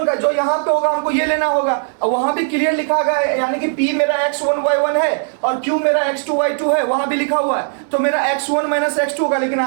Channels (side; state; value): left; silent; 68 dB below the other